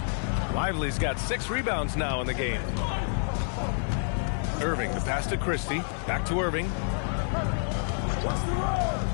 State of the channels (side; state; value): right; silent; 59 dB below the other